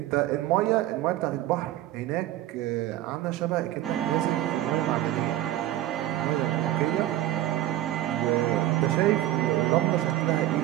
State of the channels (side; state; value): left; quieter; 14.0 dB